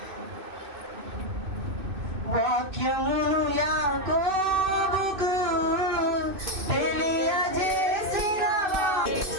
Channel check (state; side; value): late; left; 2.6 ms